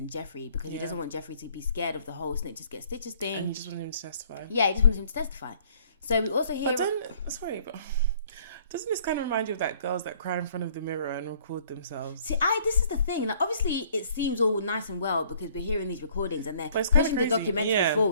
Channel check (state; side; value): inverted; both; correlation -0.59